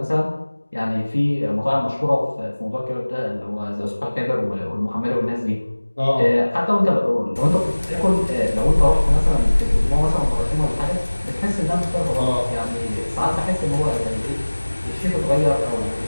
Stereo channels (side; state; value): both; inverted; correlation -1.00